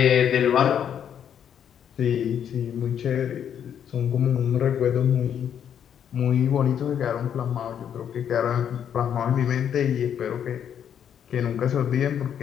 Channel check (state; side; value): quieter; right; 8.9 dB